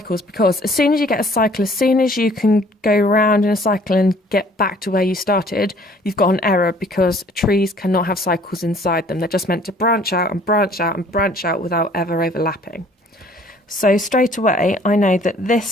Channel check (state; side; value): normal; both; correlation 0.56